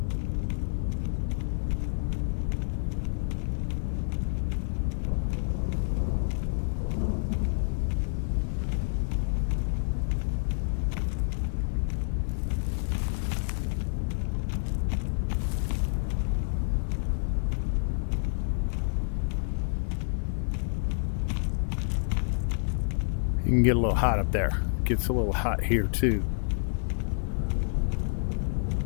You can get a little hot up there. Gets a little hot here too.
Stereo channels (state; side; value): silent; right; digital silence